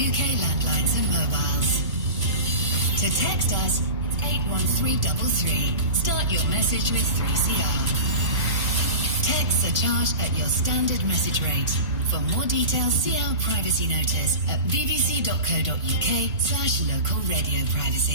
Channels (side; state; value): both; inverted; correlation -0.30